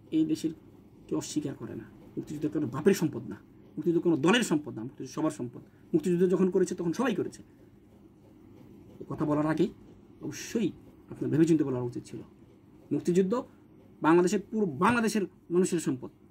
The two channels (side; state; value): both; identical; correlation 1.00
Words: এই দেশের কেউ অস্বীকার করে না। মুক্তিযুদ্ধ কোনো বাপের সম্পদ না, মুক্তিযুদ্ধ কোনো দলের সম্পদ না, মুক্তিযুদ্ধ সবার সম্পদ। মুক্তিযুদ্ধ যখন করেছে তখন সবাই করেছে। কথা বলার আগে অবশ্যই আপনার ভেবেচিন্তে বলা উচিত ছিল। মুক্তিযুদ্ধ পুরো বাংলাদেশের মানুষের সম্পদ।